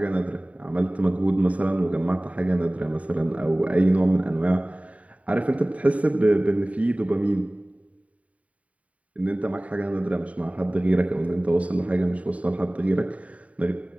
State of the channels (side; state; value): left; late; 0.067 ms